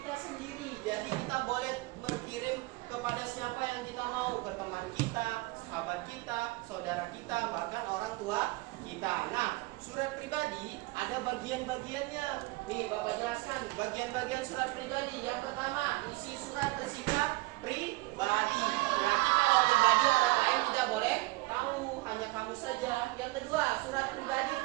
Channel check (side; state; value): left; quieter; 22.5 dB